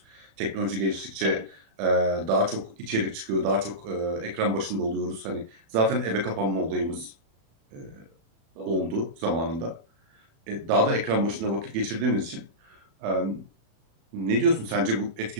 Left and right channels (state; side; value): late; left; 36 ms